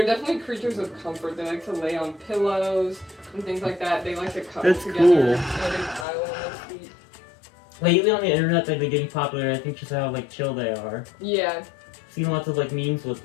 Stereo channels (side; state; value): right; drops out; at 6.1 s